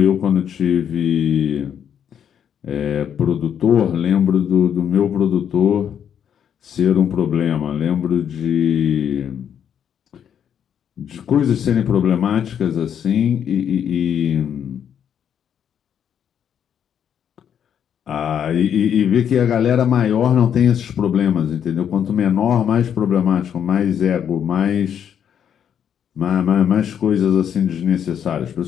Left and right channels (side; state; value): right; quieter; 8.7 dB